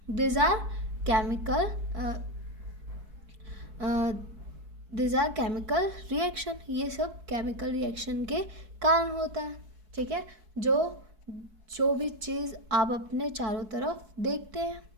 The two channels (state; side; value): late; left; 4.6 ms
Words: these are chemical these are chemical reaction. ये सब chemical reaction के कारण होता है. ठीक है, जो भी चीज़ आप अपने चारों तरफ देखते हैं.